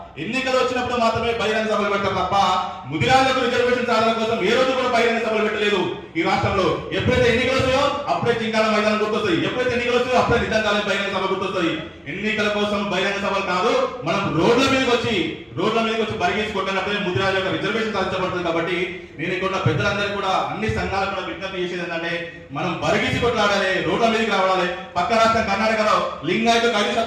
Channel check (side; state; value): both; identical; correlation 1.00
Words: ఎన్నికలు వచ్చినప్పుడు మాత్రమే బహిరంగ సభలు పెట్టారు తప్ప ముదిరాజులకు రిజర్వేషన్ సాధన కోసం ఏ రోజు కూడా బహిరంగ సభలు పెట్టలేదు ఈ రాష్ట్రంలో. ఎప్పుడైతే ఎన్నికలు వస్తాయో అప్పుడే చింకాల మైదానం గుర్తొస్తాయి, ఎప్పుడైతే ఎన్నికలు వస్తాయో అప్పుడే నిజంగానే బహిరంగ సభ గుర్తొస్తాయి. ఎన్నికల కోసం బహిరంగ సభలు కాదు, మనం రోడ్ల మీదకి వచ్చి బరిగేసి కొట్టినప్పుడే ముదిరాజు యొక్క రిజర్వేషన్ సాధించబడుతుంది. కాబట్టి నేను ఇక్కడ పెద్దలందరూ కూడా అన్ని సంఘాలు కూడా విజ్ఞప్తి చేసేది ఏంటంటే మనం బరిగేసి కొట్లాడాలి, రోడ్ల మీదకి రావాలి. పక్క రాష్ట్రం కర్ణాటకలో లింగాయతకు